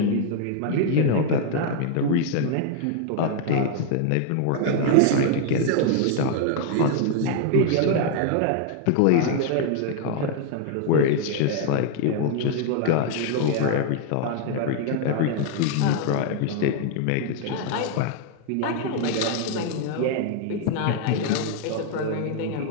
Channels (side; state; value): both; different; correlation 0.00